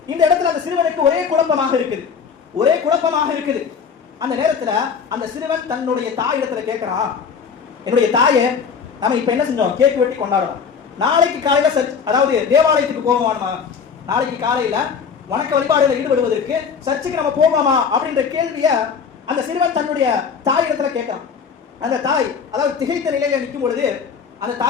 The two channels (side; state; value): right; quieter; 6.3 dB